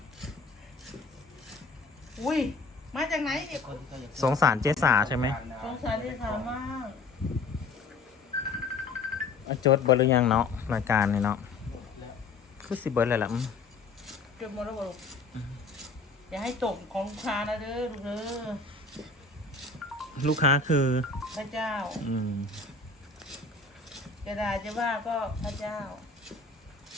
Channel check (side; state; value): right; quieter; 4.0 dB